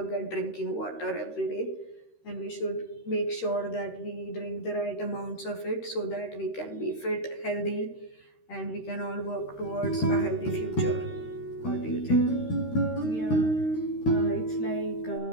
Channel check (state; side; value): late; right; 13 ms